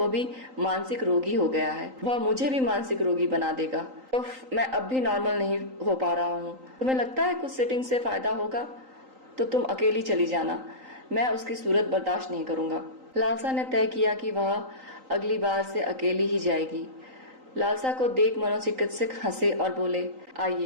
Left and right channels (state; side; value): late; left; 3.8 ms